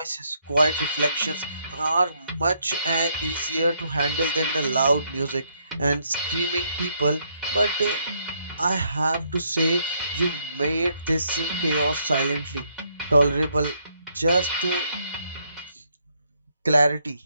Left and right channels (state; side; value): inverted; both; correlation -0.73